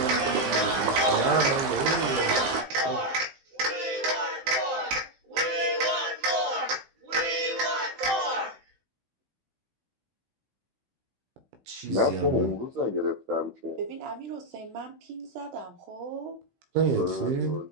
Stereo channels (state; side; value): late; left; 16 ms